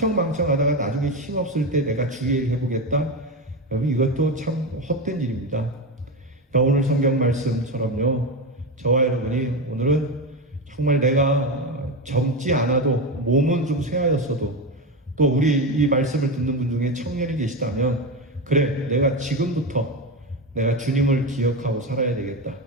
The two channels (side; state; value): both; normal; correlation 0.16